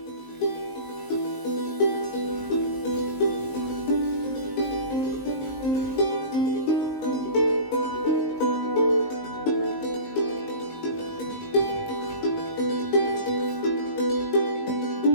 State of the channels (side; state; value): right; late; 19 ms